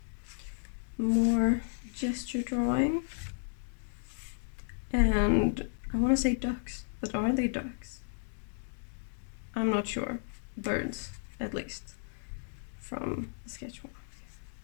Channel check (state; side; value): silent; right; digital silence